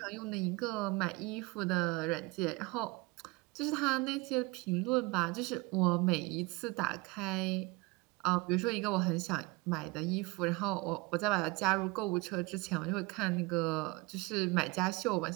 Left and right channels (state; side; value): quieter; left; 24.0 dB